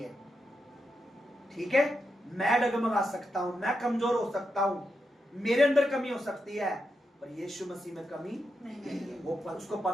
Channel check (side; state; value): both; normal; correlation 0.86